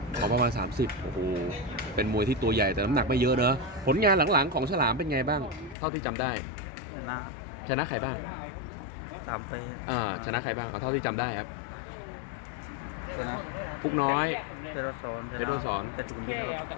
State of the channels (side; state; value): right; drops out; at 5.8 s